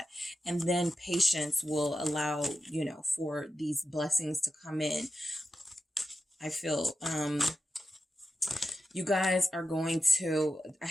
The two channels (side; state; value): both; normal; correlation 0.91